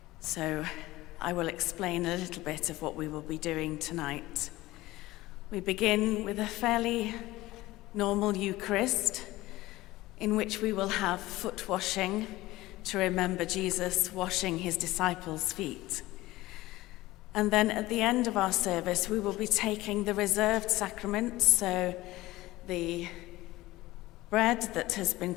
So I will explain a little bit of what we will be doing tonight. We begin with a fairly normal Eucharist in which we will have foot washing to remember Jesus washing his disciples' feet. And then at the end of our service, we will be taking the reserved sacraments, so the bread that has been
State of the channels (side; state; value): right; quieter; 18.1 dB